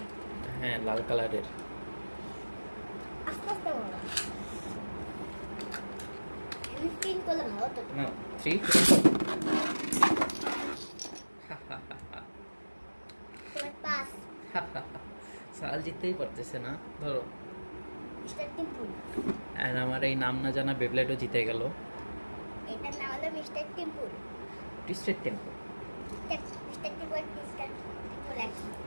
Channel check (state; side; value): inverted; both; correlation -1.00